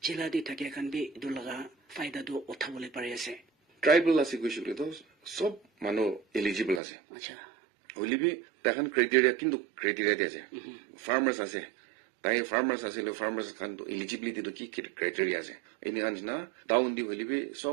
জেলা দি থাকিয়া খান বি ইটো লগা ফায়দা তো উঠাবলৈ পাৰি আছে tribal ase koisule to sob mano eligible ase আচ্ছা holibi takan criteria kintu criteria de ase farmers ase tai farmers ase lo farmers kan to eligibility to ki criteria ase ini anjna down di holibi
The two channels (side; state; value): left; drops out; at 6.8 s